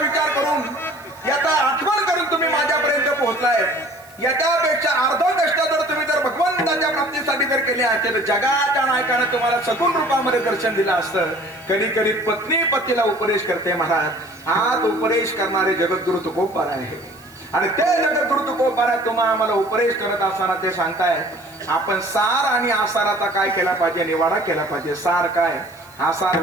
विचार करून, याचा आठवण करून तुम्ही माझ्यापर्यंत पोहोचलाय. याच्यापेक्षा अर्ध कष्ट जर तुम्ही जर भगवंताच्या प्राप्तीसाठी जर केले असते तर जगाच्या नायकाने तुम्हाला सगुण रूपामध्ये दर्शन दिलं असतं. कधी कधी पत्नी पतीला उपदेश करते महाराज. आज उपदेश करणारे जगद्गुरु तुकोबार आहे आणि ते जगद्गुरु तुकोबार तुम्हाला आम्हाला उपदेश करत असताना ते सांगताय, आपण सार आणि आसाराचा काय केला पाहिजे, निवाडा केला पाहिजे. सार काय, आसार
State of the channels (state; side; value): noise; right; hiss, 26 dB below the sound